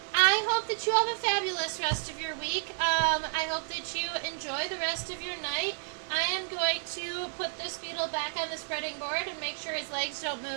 I hope that you have a fabulous rest of your week. I hope that you enjoy the rest of your night. I am going to put this beetle back on the spreading board and make sure his legs don't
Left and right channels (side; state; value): left; silent; digital silence